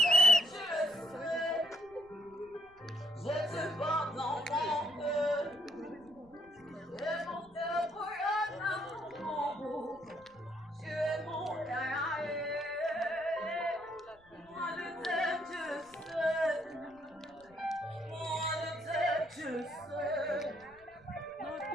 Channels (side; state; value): left; noise; rumble, 29 dB below the sound